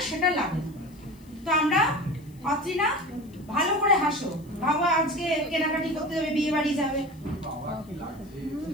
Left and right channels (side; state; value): left; noise; hiss, 29 dB below the sound